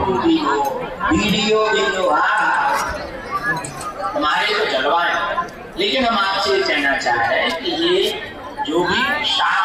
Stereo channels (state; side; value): identical; both; correlation 1.00